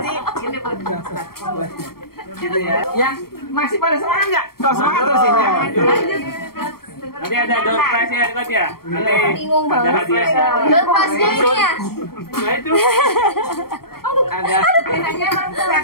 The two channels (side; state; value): right; late; 0.94 ms